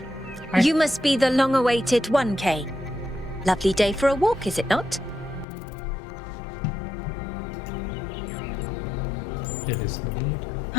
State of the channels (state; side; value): drops out; right; at 5.5 s